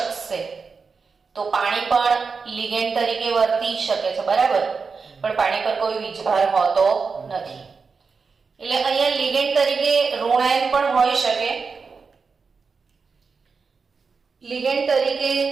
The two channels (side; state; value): left; quieter; 5.0 dB